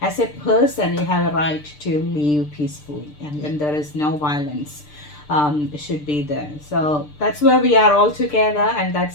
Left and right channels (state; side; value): late; right; 6.7 ms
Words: as a person you have a right to live peacefully, and when there is no violence should be there. So that's where we are all together, and